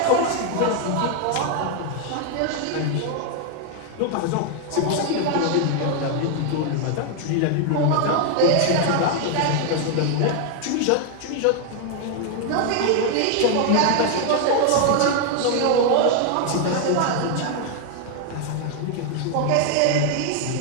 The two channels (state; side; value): different; both; correlation 0.00